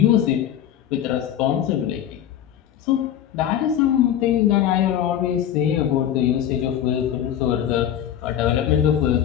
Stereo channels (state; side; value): quieter; right; 10.6 dB